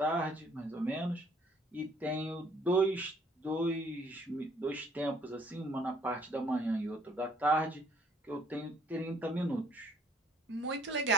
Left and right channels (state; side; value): normal; both; correlation 0.62